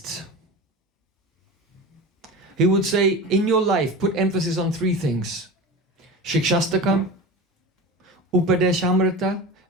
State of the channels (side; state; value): both; normal; correlation 0.30